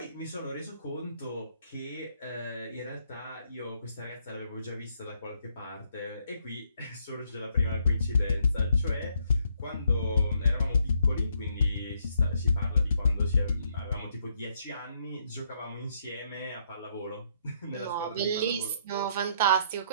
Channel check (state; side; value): inverted; both; correlation -0.71